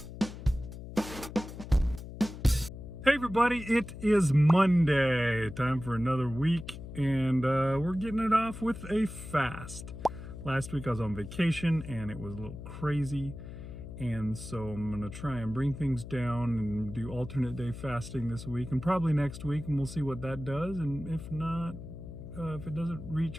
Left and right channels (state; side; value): noise; left; hum, 11 dB below the sound